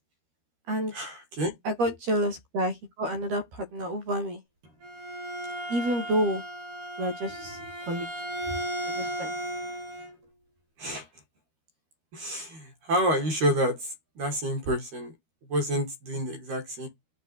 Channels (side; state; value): left; late; 13 ms